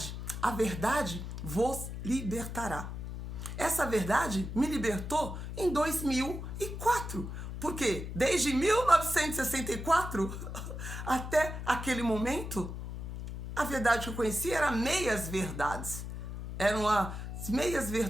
vos libertará. Essa verdade me libertou em 2004. Porque desde 1964 até aquele momento, a verdade que eu conhecia era meias verdades. Eram as meias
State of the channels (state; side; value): noise; left; hum, 7 dB below the sound